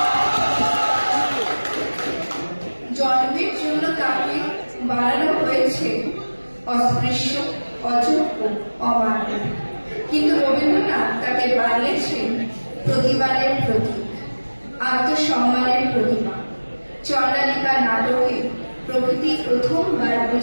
জন্মের জন্য তাকে বাড়ানো হয়েছে অস্পৃশ্য অযোগ্য অমান্য কিন্তু রবীন্দ্রনাথ তাকে বানিয়েছেন প্রতিবাদের প্রতীক আত্মসম্মানের প্রতিমা চন্দ্রালিকা নাটকে প্রকৃতি প্রথমবার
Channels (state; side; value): inverted; both; correlation -1.00